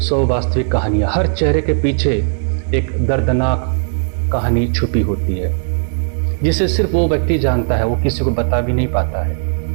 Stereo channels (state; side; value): silent; left; digital silence